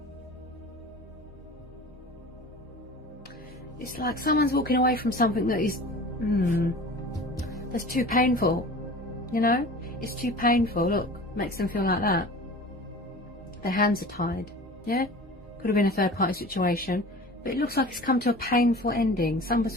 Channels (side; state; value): both; normal; correlation 0.39